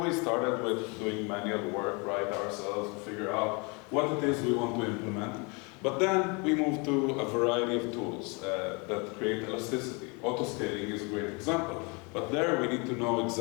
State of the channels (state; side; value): quieter; right; 30.8 dB